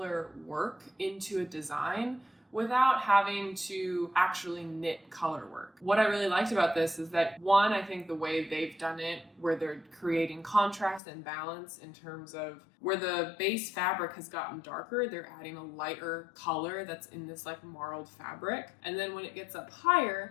work into a design without having to actually knit color work. What I really liked about this is that one, I think the way they've done it, where they're creating contrast and balance in terms of where the base fabric has gotten darker, they're adding a lighter color that's in this like marled fabric. And then when it gets up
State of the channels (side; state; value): right; drops out; at 11.0 s